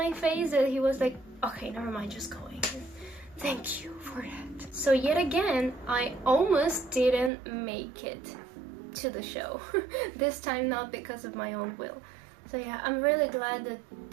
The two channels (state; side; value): drops out; left; at 7.3 s